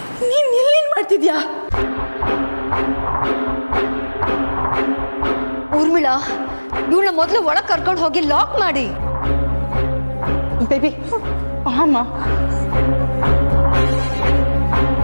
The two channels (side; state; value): both; inverted; correlation -1.00